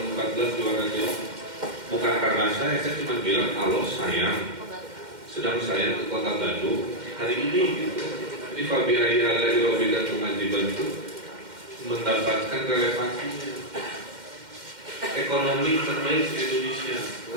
14 juara dia. Bukan karena saya cuma bilang kalau sedang saya ke kota Bandung hari ini gitu. Jadi Fabi Raya dari Robi dan Pengaji Bandung mendapatkan relevansinya. Ekonomi terbaik di Indonesia,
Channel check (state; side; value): late; left; 2.1 ms